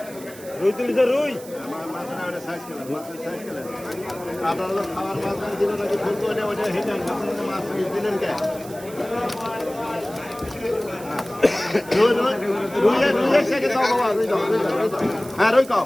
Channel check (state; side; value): noise; right; hiss, 18 dB below the sound